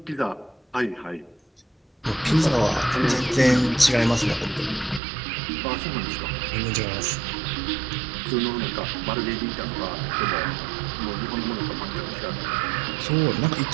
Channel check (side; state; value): left; drops out; at 5.0 s